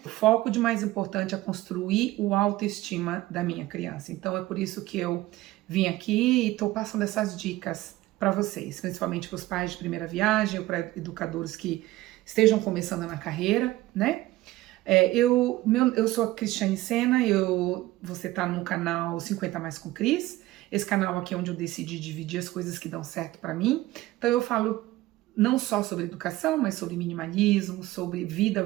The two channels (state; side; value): quieter; left; 17.3 dB